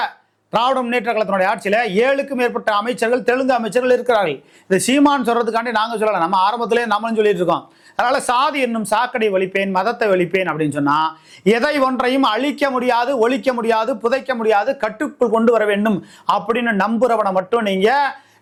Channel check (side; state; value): both; identical; correlation 1.00